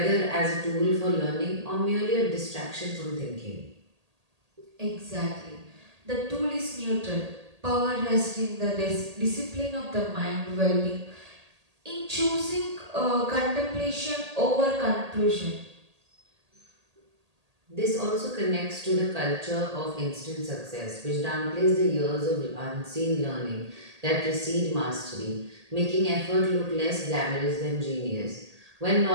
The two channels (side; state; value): left; late; 1.8 ms